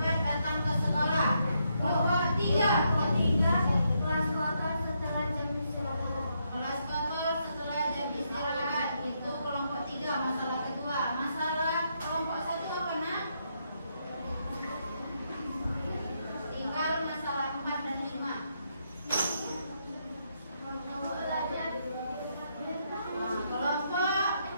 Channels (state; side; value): inverted; both; correlation -0.78